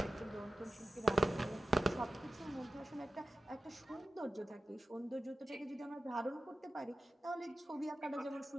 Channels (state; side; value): normal; both; correlation 0.92